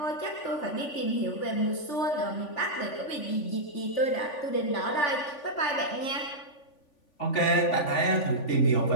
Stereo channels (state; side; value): late; right; 3.5 ms